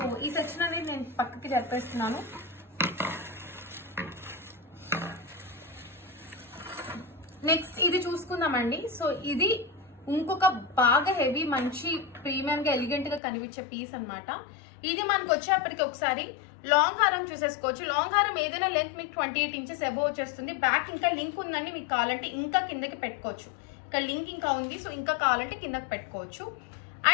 ఈ సెక్షన్ అనేది నేను పక్కకి జరిపేస్తున్నాను. నెక్స్ట్ ఇది చూసుకుందామండి. సో ఇది ఇంకొక బాగా హెవీ మంచి ప్రీమియం గా ఎలిగెంట్ గా కనిపించే పీస్ అనమాట. ఇది మనకు వచ్చేప్పటికి ఒకసారి లాంగ్ హారం చూసేసుకోవచ్చు. లాంగ్ హారం ఏదైనా లెంత్ మీకు 28 ఇంచెస్ అబోవ్ వచ్చేస్తుంది. బ్యాక్ ఇంకా లింక్ ఉందండి, మీకు కావాలంటే ఇంకా కిందకి పెట్టుకోవచ్చు. ఇక్కడ లింక్ ఇంకా ఉంది, సో ఇంకా కావాలంటే కిందకి పెట్టుకోవచ్చు.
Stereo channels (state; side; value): drops out; right; at 13.2 s